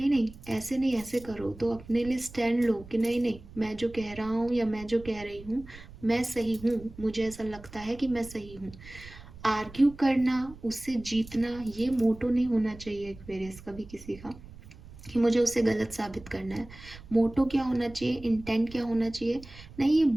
नहीं ऐसे नहीं ऐसे करो, तो अपने लिए स्टैंड लो कि नहीं नहीं, मैं जो कह रहा हूँ या मैं जो कह रही हूँ मैं सही हूँ, मुझे ऐसा लगता है कि मैं सही हूँ। आर्ग्यू करना, उससे जीतना, ये मोटो नहीं होना चाहिए एक्वेरियस कभी किसी का कि मुझे उसे गलत साबित करना है। मोटो क्या होना चाहिए, इंटेंट क्या होना चाहिए, नहीं ये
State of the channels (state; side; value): noise; right; rumble, 18 dB below the sound